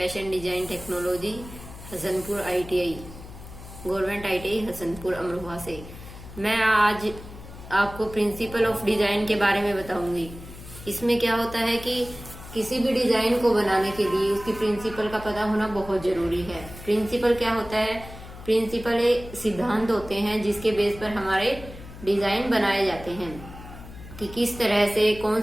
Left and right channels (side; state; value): left; noise; hum, 15 dB below the sound